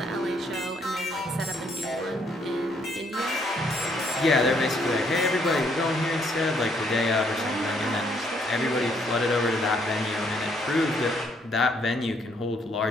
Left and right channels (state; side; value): normal; both; correlation 0.69